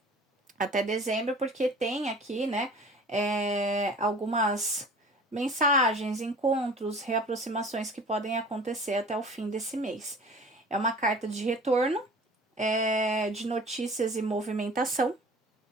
até dezembro, porque tem aqui, né, algumas mensagens, encontros, reaproximações que podem acontecer até o fim desse mês. É uma carta de retorno, de notícias e movimentação,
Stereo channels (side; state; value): both; normal; correlation 0.43